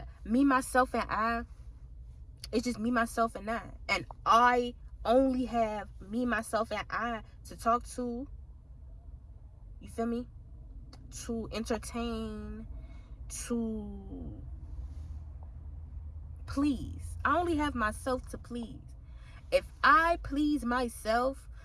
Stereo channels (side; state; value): both; identical; correlation 1.00